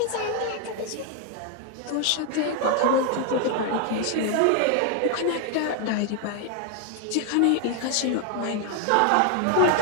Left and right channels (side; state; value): both; different; correlation 0.00